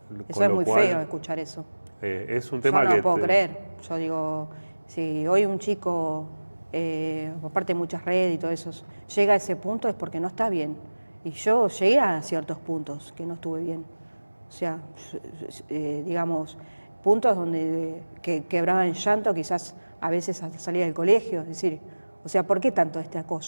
Eso es muy feo escuchar eso. Es un tema yo no que puedo creer. Yo digo, si hoy un chico, aparte de muchas redes y todo eso, llega a ese punto es porque no está bien. Y yo llegué a ciertos puntos que no estuve bien. O sea, digamos, puntos donde que quebraba en llanto, quizás a veces hasta salía del colegio. Es decir, o sea, ¿por qué tanto este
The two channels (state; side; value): inverted; both; correlation -1.00